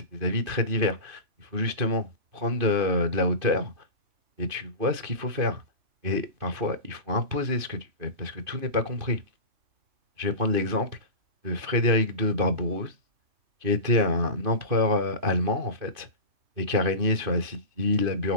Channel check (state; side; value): late; left; 2.5 ms